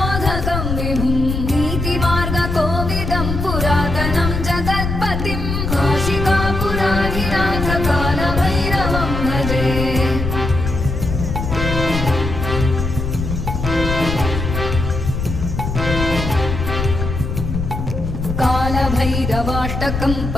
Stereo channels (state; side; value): noise; left; rumble, 3 dB below the sound